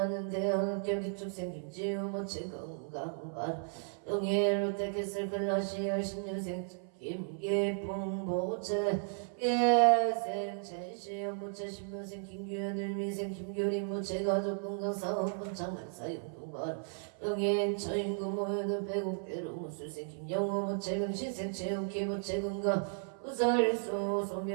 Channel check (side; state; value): left; silent; 55 dB below the other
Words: 대학 합격 기축생 김지우 부채 건강 발언 영예 롯데캐슬 클라시열 10년생 김계풍 부채 예생 최시영 부채 10년생 김규현 을미생 김교림 부채 가족 건강 사업번 장만사 용동발 영예인 처인구 모여는 배국대로 무술생 김영호 부채 명신생 최욱희 부채 건강 우설수